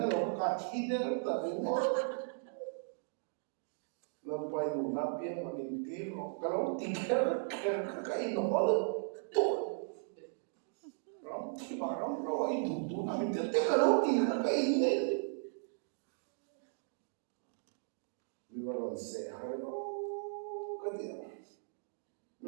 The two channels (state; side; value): silent; left; digital silence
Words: cái lâu cái thi đấy là đúng không lần quay đủ năm biên mà mình tí cái lâu tí cái nó là thì bà nó rồi đủ là mình tiếp cái đó thì nó cái gì đấy mình vào lần xe hay nó cái gì